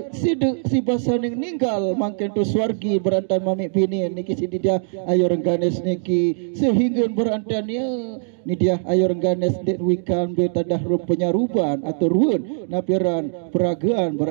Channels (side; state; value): left; silent; digital silence